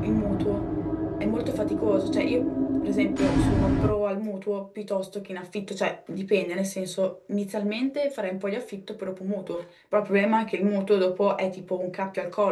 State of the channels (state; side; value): identical; both; correlation 1.00